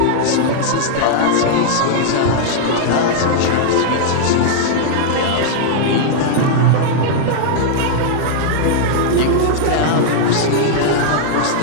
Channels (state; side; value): different; both; correlation -0.01